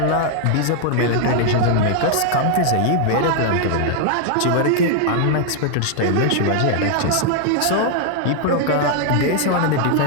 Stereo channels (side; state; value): both; different; correlation 0.00